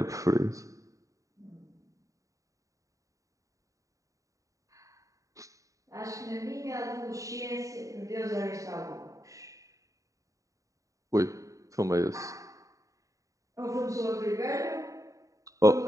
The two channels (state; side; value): late; left; 0.16 ms